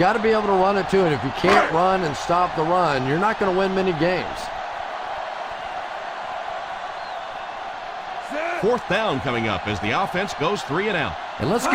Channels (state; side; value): identical; both; correlation 1.00